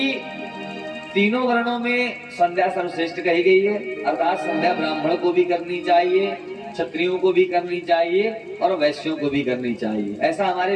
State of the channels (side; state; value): both; identical; correlation 1.00